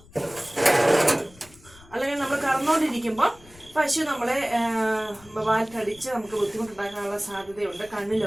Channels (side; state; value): left; noise; rumble, 24 dB below the sound